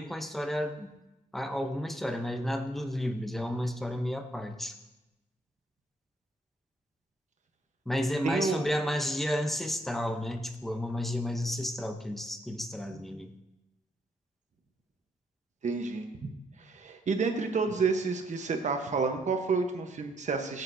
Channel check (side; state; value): both; normal; correlation 0.72